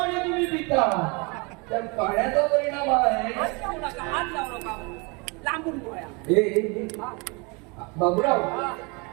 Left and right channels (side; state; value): left; quieter; 29.9 dB